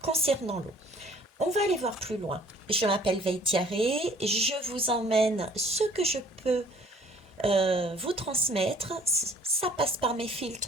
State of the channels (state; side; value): normal; both; correlation 0.54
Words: concernant l'eau. On va aller voir plus loin. Je m'appelle Veitiaré, je vous emmène ce que je peux vous transmettre. Ça passe par mes